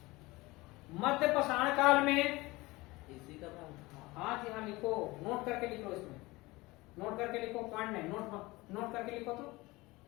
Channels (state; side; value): quieter; right; 21.4 dB